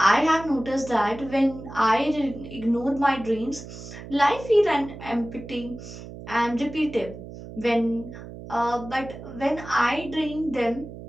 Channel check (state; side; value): noise; right; hum, 13 dB below the sound